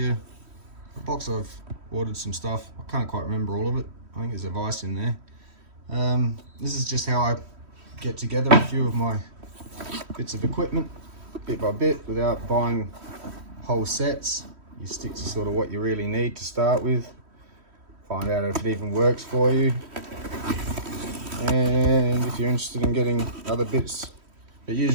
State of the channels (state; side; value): late; left; 3.1 ms